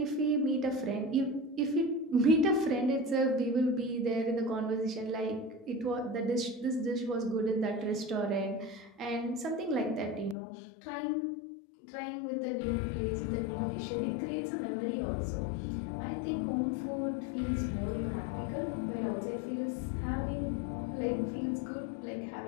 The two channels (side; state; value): right; drops out; at 10.4 s